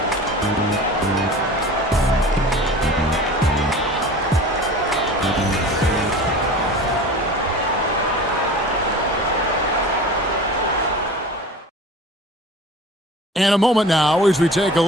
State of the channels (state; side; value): normal; both; correlation 0.39